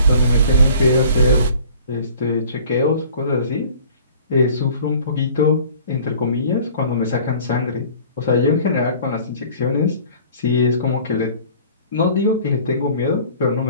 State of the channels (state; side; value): inverted; both; correlation -0.48